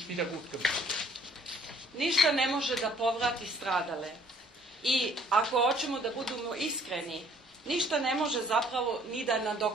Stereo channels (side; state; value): both; normal; correlation 0.59